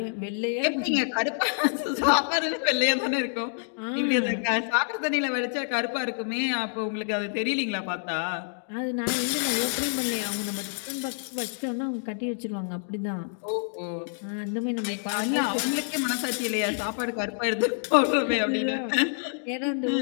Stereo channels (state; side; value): silent; right; digital silence